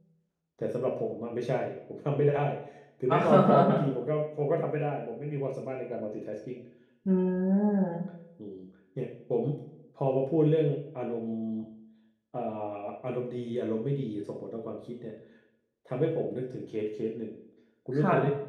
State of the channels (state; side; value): identical; both; correlation 1.00